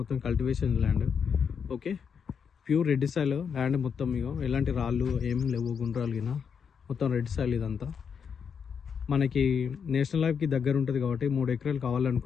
cultivation land. Okay, pure red soil land మొత్తం. ఇగో ఎలాంటి రాళ్ళు ఏం లేవు, గుండ్రాలు గిన మొత్తం రెడ్ సాయిల్ ఇదంతా. మనకి నేషనల్ హైవేకి దగ్గర ఉంటుంది కాబట్టి 3 ఎకరాలు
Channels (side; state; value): right; quieter; 6.8 dB